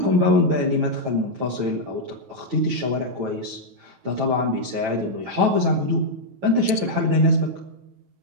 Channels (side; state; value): left; late; 9.1 ms